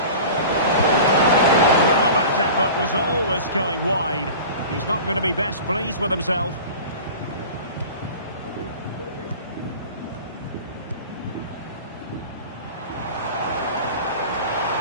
Well, that effort was always going wide. He's not going to be best pleased with himself.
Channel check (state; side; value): inverted; both; correlation -0.38